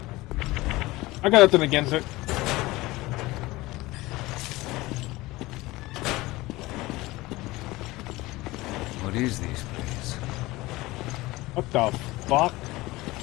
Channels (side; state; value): right; quieter; 19.9 dB